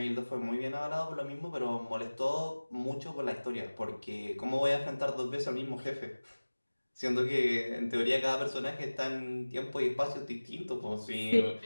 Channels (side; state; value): both; inverted; correlation -1.00